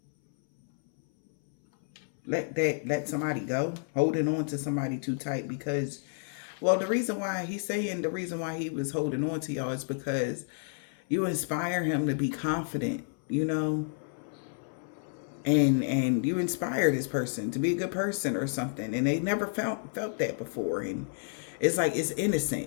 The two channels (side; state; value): right; silent; 58 dB below the other